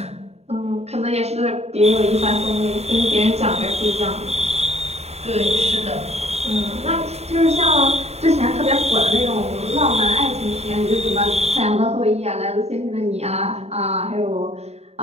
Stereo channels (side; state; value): left; late; 0.31 ms